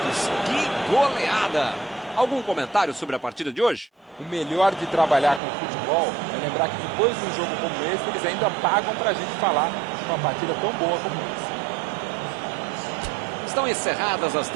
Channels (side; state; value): left; drops out; at 5.4 s